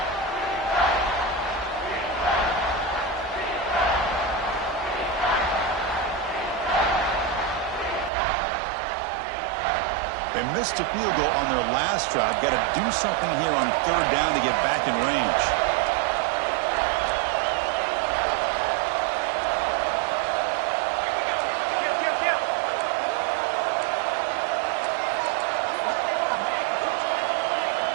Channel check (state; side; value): drops out; left; at 8.1 s